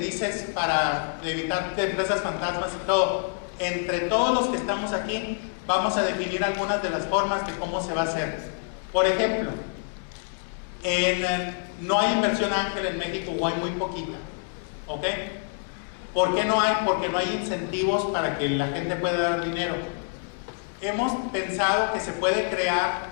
para evitar empresas fantasmas y todo, entre todos los que estamos aquí, vamos a definir algunas de las formas de cómo se va a hacer. Por ejemplo, no hay inversión ángel en México o hay muy poquita, ¿ok? ¿Por qué no hay? Porque no hay incentivos para que la gente pueda dar dinero. Hemos pensado que se puede crear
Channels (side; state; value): right; silent; 60 dB below the other